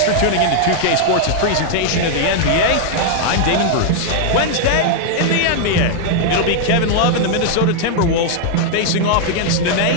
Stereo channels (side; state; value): both; different; correlation 0.00